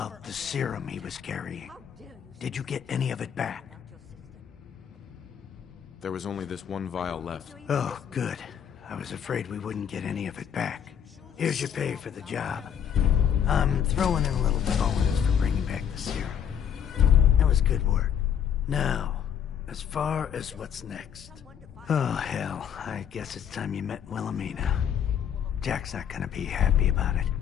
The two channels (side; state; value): right; quieter; 8.7 dB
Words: the serum he was carrying? How dare you Did you get any of it back? about your sister? There was only this one vial left. Oh, good. I was afraid we wouldn't get any of it back. Here's your pay for the job. I'm throwing in a little bonus for bringing back the serum. That was good work. Now, as far as what's next. Oh, hell. I guess it's time you met Wilhelmina. Jack's not gonna be happy about it.